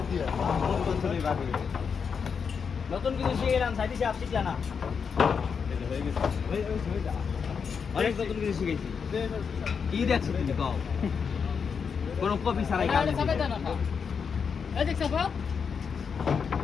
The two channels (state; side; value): quieter; right; 6.2 dB